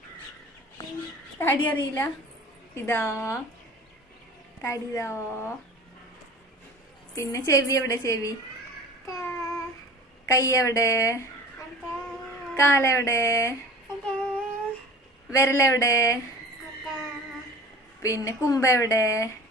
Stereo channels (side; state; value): both; normal; correlation 0.41